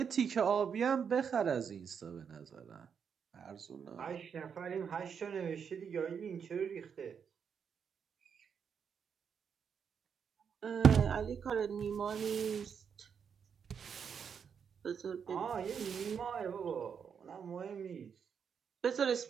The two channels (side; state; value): left; quieter; 7.0 dB